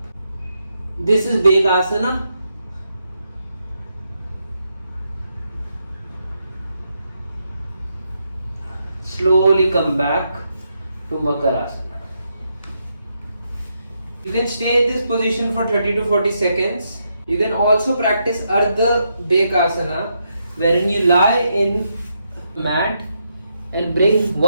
This is Bhekasana. Slowly come back to Makarasana. You can stay in this position for 30 to 40 seconds. You can also practice Ardha Bhekasana, wherein you lie in mat and bring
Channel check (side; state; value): both; inverted; correlation -0.80